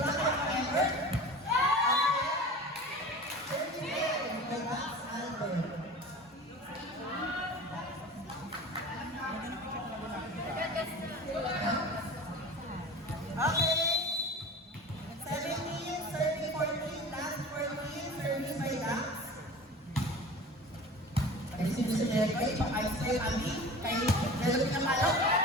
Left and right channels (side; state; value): both; normal; correlation 0.37